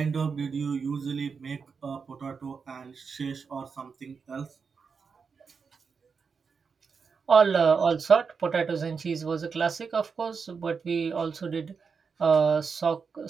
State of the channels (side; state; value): left; quieter; 5.6 dB